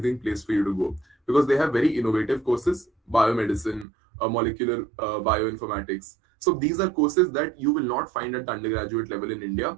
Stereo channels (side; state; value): left; drops out; at 3.9 s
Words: place for you to go because they have very innovative courses, biomedicine, molecular bioinformatics. So these are courses that you will not find at undergraduate level in